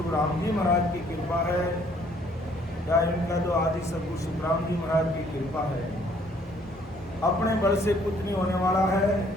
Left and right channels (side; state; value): both; normal; correlation 0.62